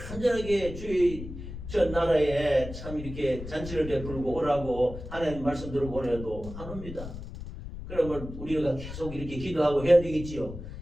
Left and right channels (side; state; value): left; noise; rumble, 10 dB below the sound